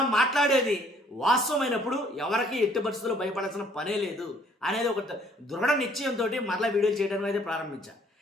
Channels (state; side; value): normal; both; correlation 0.61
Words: మాట్లాడేది వాస్తవమైనప్పుడు ఎవరికి ఎట్టి పరిస్థితుల్లో భయపడాల్సిన పనే లేదు అనేది ఒక దృఢ నిశ్చయంతో మరలా వీడియోలు చేయడం అయితే ప్రారంభించాను.